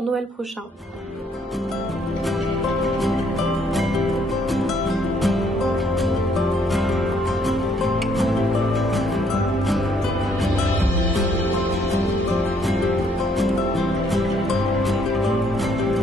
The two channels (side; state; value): both; normal; correlation 0.68